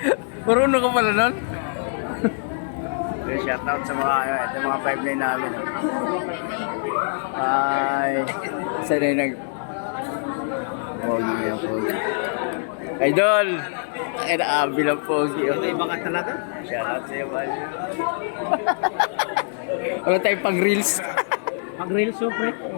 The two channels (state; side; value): silent; right; digital silence